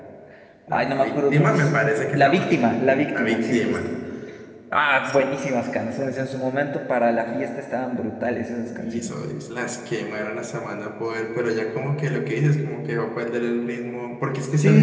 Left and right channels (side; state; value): both; identical; correlation 1.00